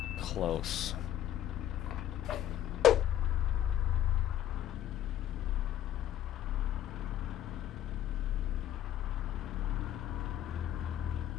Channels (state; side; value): quieter; right; 11.6 dB